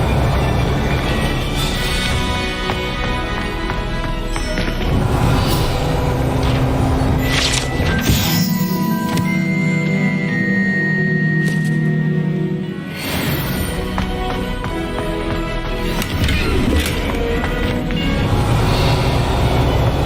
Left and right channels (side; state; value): both; identical; correlation 1.00